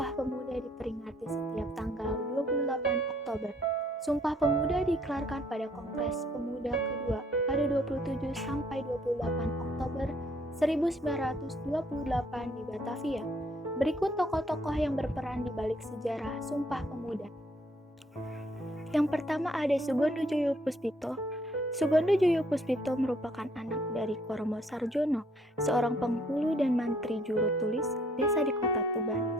Pemuda diperingati setiap tanggal 28 Oktober. Sumpah Pemuda dikelarkan pada Kongres Pemuda kedua pada 27 sampai 28 Oktober 1928 di Batavia. Berikut tokoh-tokoh yang berperan di balik sejarah Sumpah Pemuda. Yang pertama ada Sugondo Joyo Puspito. Sugondo Joyo Puspito merupakan anak dari Koromo Sarjono, seorang penghulu dan mantri juru tulis desa di Kota Tuban,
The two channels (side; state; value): both; normal; correlation 0.65